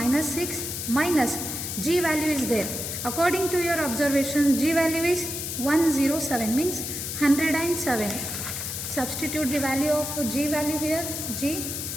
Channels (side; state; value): left; noise; hiss, 5 dB below the sound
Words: 6 minus G value is there. According to your observation, G value is 107, means 107. Substitute the value of G value here, G,